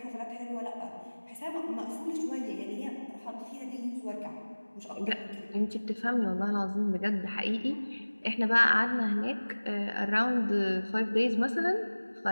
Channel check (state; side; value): inverted; both; correlation -1.00